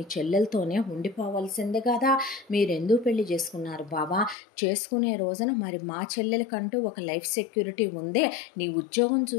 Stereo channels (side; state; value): right; drops out; at 4.4 s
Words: చెల్లెలతోనే ఉండిపోవాల్సిందే కదా. మీరెందుకు పెళ్లి చేసుకున్నారు బాబా? చేసుకునే రోజున మరి మా చెల్లెలకంటూ ఒక లైఫ్ సెక్యూరిటీ ఉంది. నీ ఉద్యోగం